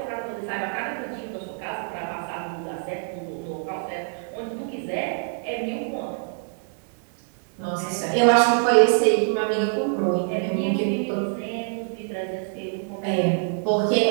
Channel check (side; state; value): left; silent; 58 dB below the other